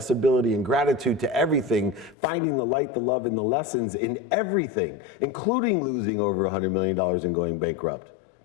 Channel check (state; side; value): drops out; right; at 2.1 s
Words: and gratitude to everything, finding the light, the love, and the lessons in everything, including losing over $100 million and going bankrupt.